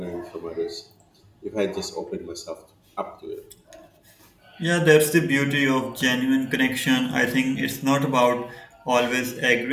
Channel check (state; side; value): identical; both; correlation 1.00